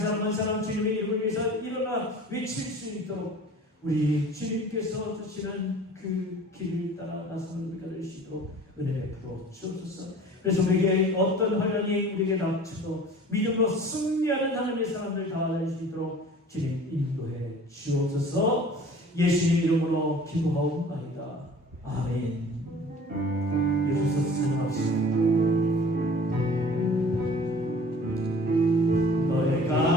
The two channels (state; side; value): normal; both; correlation 0.45